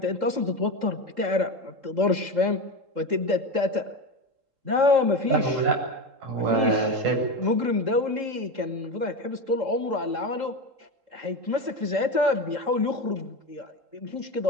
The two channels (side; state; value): left; late; 3.7 ms